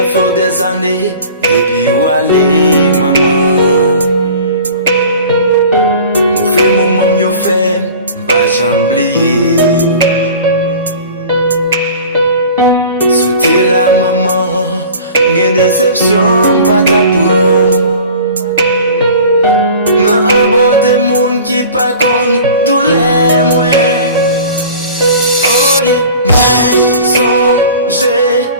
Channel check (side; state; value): both; inverted; correlation -0.42